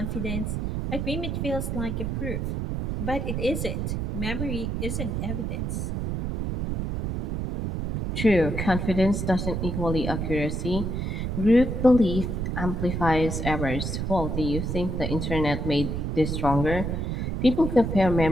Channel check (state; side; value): noise; right; rumble, 2 dB below the sound